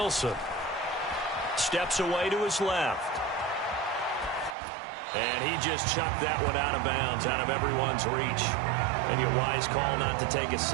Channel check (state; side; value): drops out; left; at 4.5 s